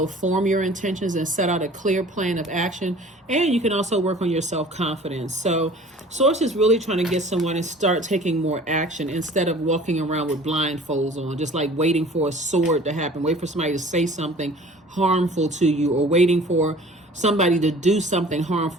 form your intentions and set out a clear plan of action. And you can also work on your self-confidence. So Source is really trying to get someone to start taking more action instead of walking around with blindfolds on, just like waiting for a sword to happen, wait for somebody to say something harmful to you, or waiting for somebody to do something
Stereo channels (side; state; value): both; normal; correlation 0.47